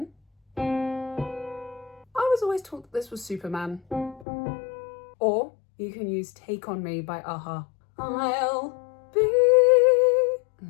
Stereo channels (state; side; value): drops out; right; at 4.2 s